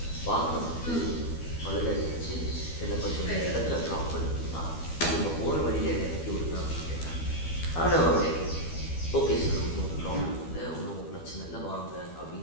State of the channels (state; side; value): late; right; 12 ms